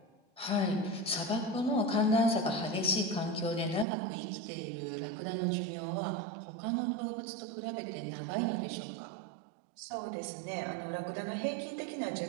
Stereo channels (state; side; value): drops out; left; at 3.9 s